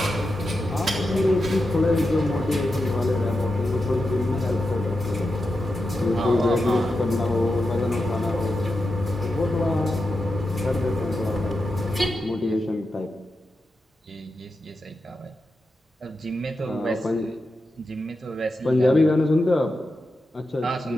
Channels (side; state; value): both; normal; correlation 0.89